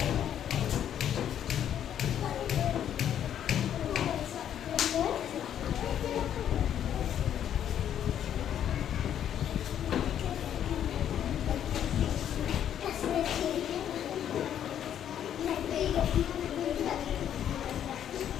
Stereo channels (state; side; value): quieter; right; 9.9 dB